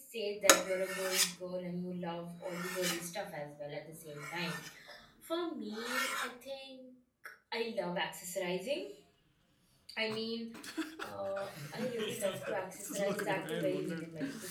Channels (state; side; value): identical; both; correlation 1.00